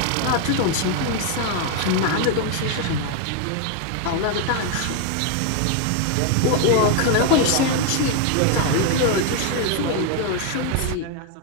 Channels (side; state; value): both; different; correlation 0.01